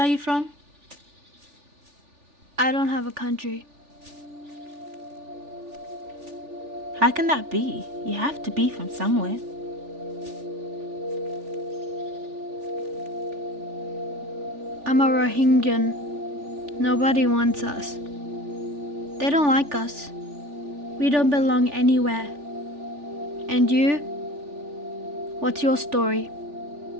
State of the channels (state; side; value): late; left; 3.4 ms